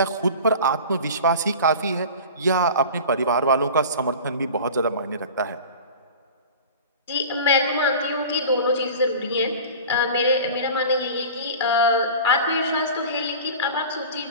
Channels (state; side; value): inverted; both; correlation -0.37